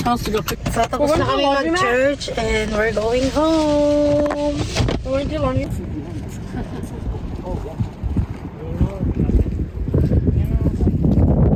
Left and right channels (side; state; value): both; identical; correlation 1.00